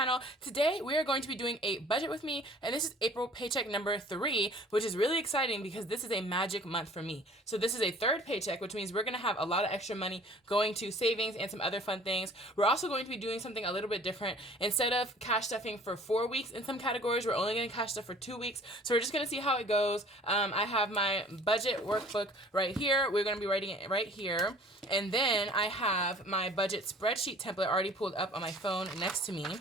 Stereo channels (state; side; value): normal; both; correlation 0.51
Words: Today we are going to be doing a budget with me, and this is April paycheck number 3, which is really exciting because this is a magic month for me. So this is a third paycheck, which means we're going to have a lot of extra money going to savings and some other fun things. We're also going to be doing something a little bit different. Instead of cash stuffing for 4 weeks in some categories, we're only going to cash stuff for 2 weeks. So we're just going to see how it goes. I have my budget workbook right here. We're going to be writing it right here. And then I have my budget spreadsheet template already pulled up on my phone next to me.